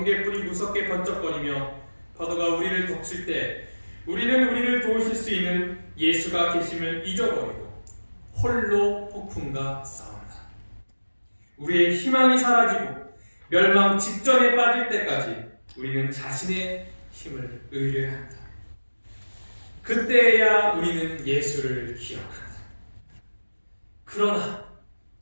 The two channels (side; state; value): both; inverted; correlation -1.00